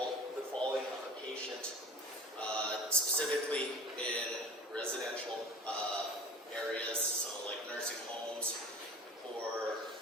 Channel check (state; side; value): normal; both; correlation 0.39